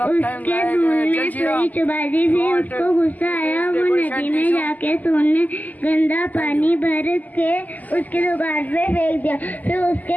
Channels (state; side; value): late; right; 0.081 ms